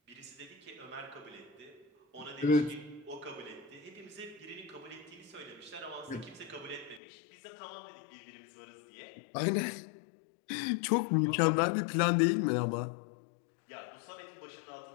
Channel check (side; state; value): right; drops out; at 7.0 s